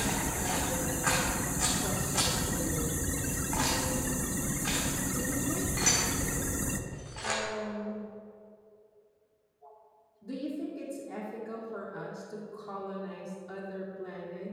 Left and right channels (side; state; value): both; identical; correlation 1.00